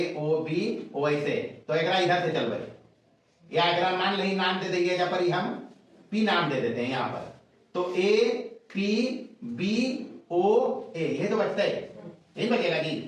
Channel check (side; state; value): both; identical; correlation 1.00